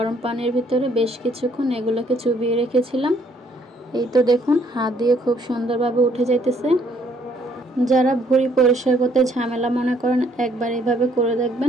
পানির ভিতরে বেশ কিছুক্ষণ এগুলোকে চুবিয়ে রেখেছিলাম। এই তো দেখুন, হাত দিয়ে খুব সুন্দরভাবে উঠে যাইতেছে। যারা ভুঁড়ি পরিষ্কার করতে ঝামেলা মনে করেন, একবার এইভাবে করে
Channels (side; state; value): both; normal; correlation 0.65